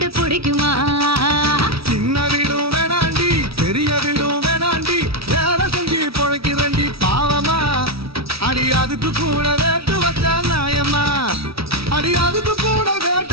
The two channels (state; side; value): late; left; 0.77 ms